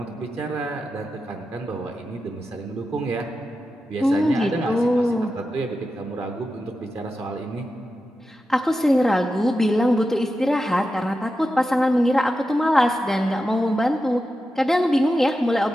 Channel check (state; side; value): normal; both; correlation 0.90